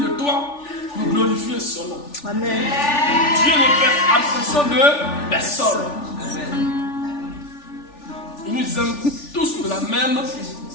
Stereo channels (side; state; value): right; late; 3.4 ms